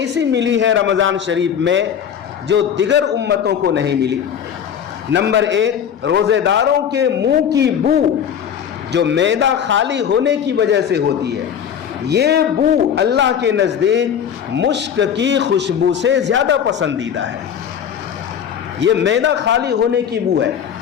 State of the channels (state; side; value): quieter; right; 8.4 dB